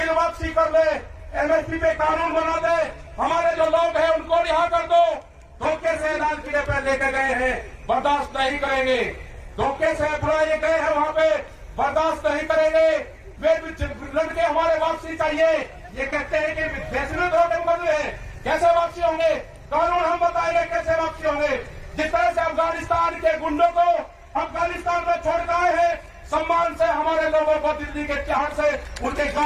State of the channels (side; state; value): both; identical; correlation 1.00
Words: वापसी कर ले, एमएसपी पे कानून बना दे। हमारे जो लोग हैं उनको रिहा कर दो। धोखे से लाल किले पे लेके गए हैं, बर्दाश्त नहीं करेंगे। धोखे से बुलाए गए हैं वहां पे, बर्दाश्त नहीं करेंगे। वे लड़के हमारे वापसी चाहिए। ये कहते हैं कि देश में धोखे बदले हैं, कैसे वापसी होंगे? कानून हम बताएंगे कैसे वापसी होंगे। जिस तरह से अफगानिस्तान के गुंडों को अफगानिस्तान में छोड़ के आए हैं, सम्मान से हमारे लोगों को दिल्ली के तिहाड़ से उनके